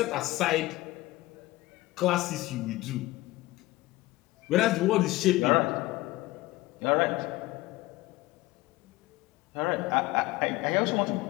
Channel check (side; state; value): right; quieter; 18.8 dB